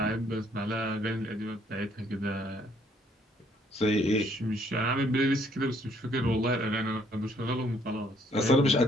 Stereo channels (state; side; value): normal; both; correlation 0.66